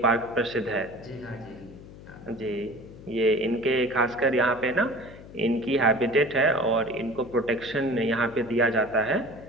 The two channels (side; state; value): left; noise; hum, 17 dB below the sound